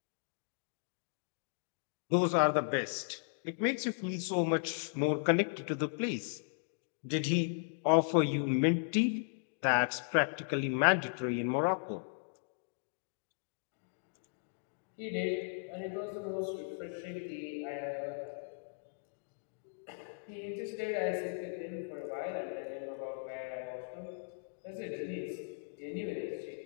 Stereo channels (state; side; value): silent; right; digital silence